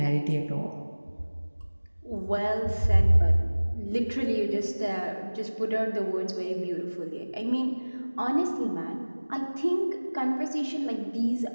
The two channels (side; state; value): both; inverted; correlation -1.00